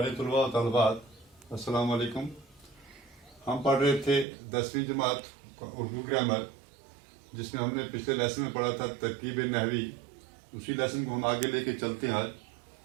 तलबा और तलबात, अस्सलाम वालेकुम। हम पढ़ रहे थे 10वीं जमात उर्दू ग्रामर, जिसमें हमने पिछले लेसन में पढ़ा था तरकीब नहवी। उसी लेसन को हम आगे लेके चलते हैं आज।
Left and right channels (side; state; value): left; drops out; at 4.2 s